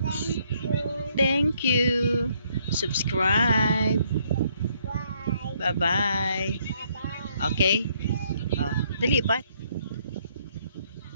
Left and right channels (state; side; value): inverted; both; correlation -0.69